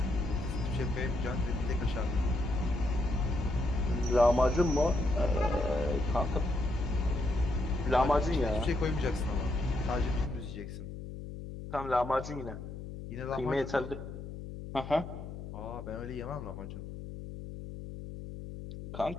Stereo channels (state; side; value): noise; left; hum, 10 dB below the sound